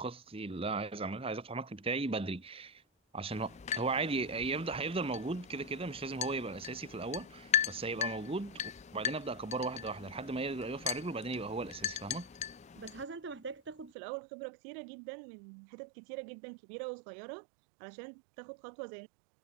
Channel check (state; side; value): drops out; left; at 13.9 s